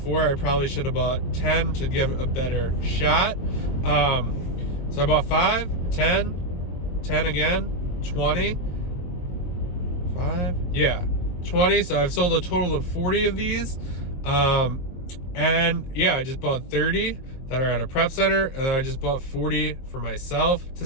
I probably should have bought 10 to give a better shot. So I bought 5, 10, 10 again, 20, 5, yeah, 20. So I've sold a total of 40 of these. And yeah, I just bought 30 that are at a prep center, and then I just bought 40 for myself to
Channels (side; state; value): right; late; 23 ms